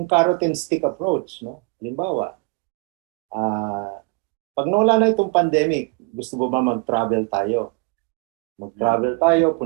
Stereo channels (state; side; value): quieter; left; 30.1 dB